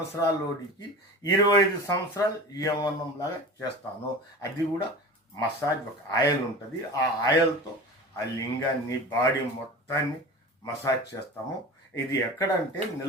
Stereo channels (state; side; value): normal; both; correlation 0.34